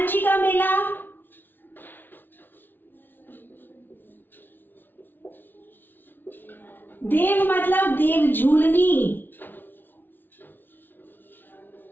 जी का मेला, देव मतलब देव झूलनी,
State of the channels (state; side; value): late; right; 0.094 ms